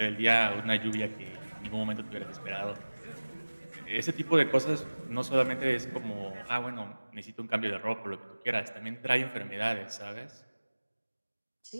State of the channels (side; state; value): both; inverted; correlation -1.00